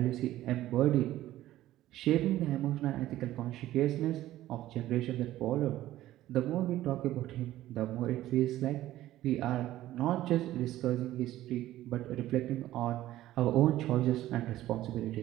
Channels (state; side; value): quieter; left; 14.5 dB